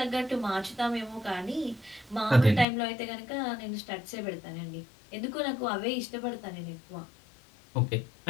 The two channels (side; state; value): right; drops out; at 2.7 s